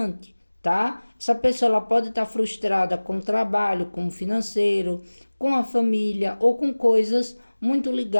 tá? Essa pessoa ela pode estar frustrada com o trabalho, com o financeiro, com a família ou com coisas muito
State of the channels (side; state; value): both; inverted; correlation -1.00